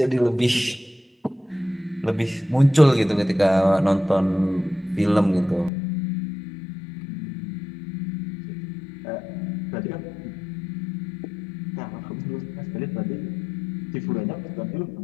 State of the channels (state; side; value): drops out; right; at 5.7 s